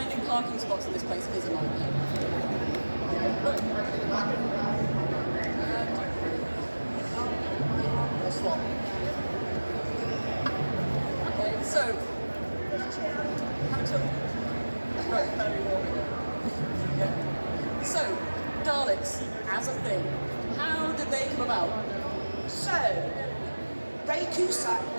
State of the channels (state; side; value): inverted; both; correlation -1.00